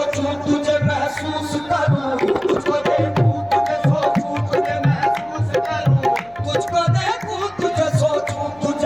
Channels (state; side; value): noise; left; hum, 26 dB below the sound